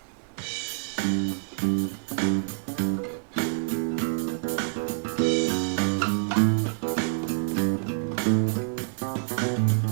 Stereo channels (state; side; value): silent; left; 60 dB below the other